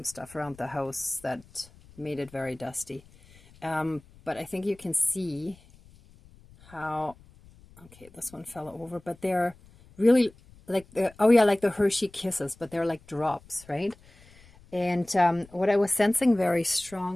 stuff around the house that made it very dusty. But I think you can see how... Okay, this one fell over, but they're really like the, oh yeah, like the Hershey Kisses, but they're like drops, right? And what I was sensing very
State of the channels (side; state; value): left; noise; rumble, 25 dB below the sound